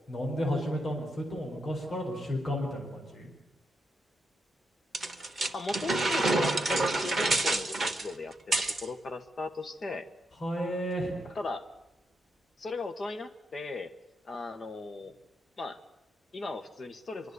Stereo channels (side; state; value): both; normal; correlation 0.82